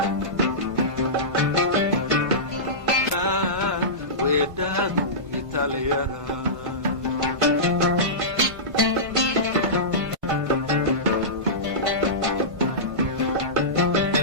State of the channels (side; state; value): left; late; 1.5 ms